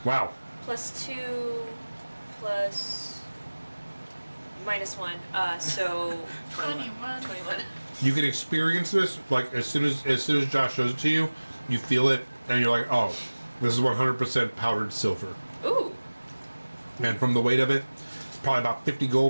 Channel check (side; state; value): both; inverted; correlation -1.00